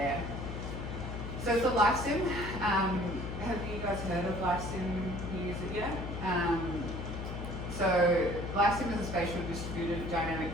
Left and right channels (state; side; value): noise; left; hum, 6 dB below the sound